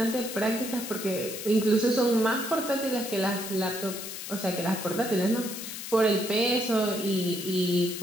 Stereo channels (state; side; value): noise; left; hiss, 8 dB below the sound